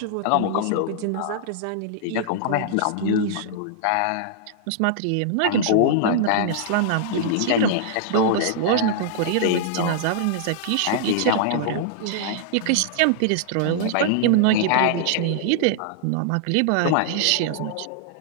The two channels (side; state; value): both; different; correlation -0.01